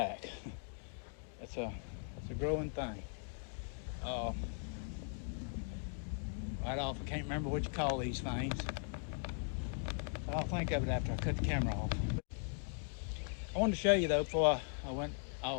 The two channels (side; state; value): right; silent; 52 dB below the other